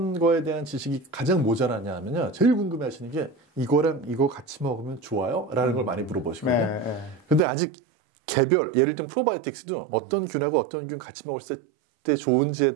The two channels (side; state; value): left; drops out; at 7.5 s